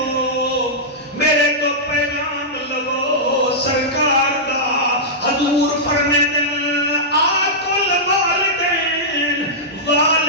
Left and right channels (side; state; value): both; normal; correlation -0.11